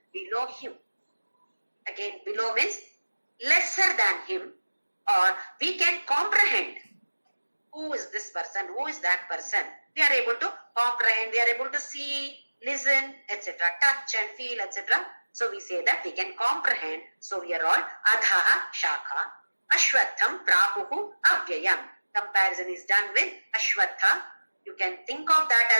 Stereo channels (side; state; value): both; inverted; correlation -1.00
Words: below him. Again, below means lesser than him, or we can comprehend who is this person, who is that person. We are able to comprehend, we are able to see, listen, etc., touch and feel, etc. So we say that we can comprehend. So we are all Adhaha Shakha, Ashwatham Prahuhu Avyayam. Comparison is done with Ashwatha. You can think of that